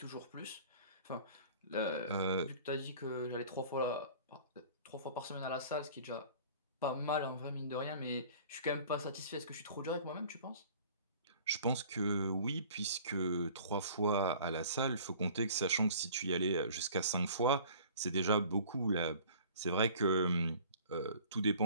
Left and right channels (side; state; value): both; inverted; correlation -0.47